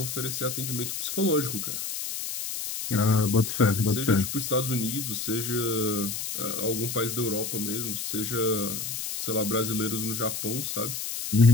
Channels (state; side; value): noise; left; hiss, 4 dB below the sound